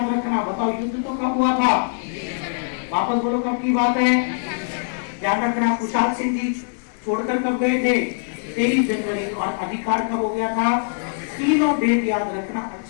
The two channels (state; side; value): silent; right; digital silence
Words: रखना। बताओ युद्ध तो कब हुआ था? वापस बोलो कब की बात है? ध्यान रखना, कुशाल सिंह जी छोड़कर कब गए थे? 23 जनवरी। और अधिकार कब हो गया था? तीनों डेट याद रखना